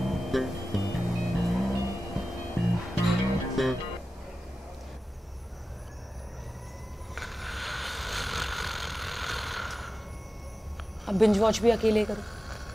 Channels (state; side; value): normal; both; correlation 0.94